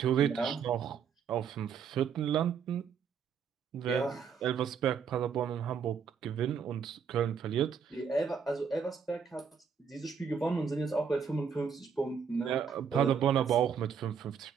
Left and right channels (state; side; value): quieter; left; 6.8 dB